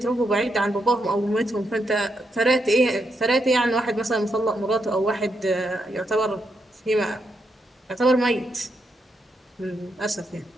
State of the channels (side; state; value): both; normal; correlation 0.81